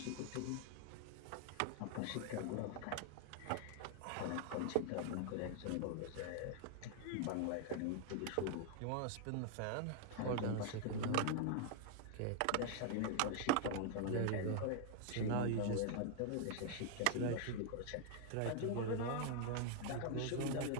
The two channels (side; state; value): both; different; correlation 0.00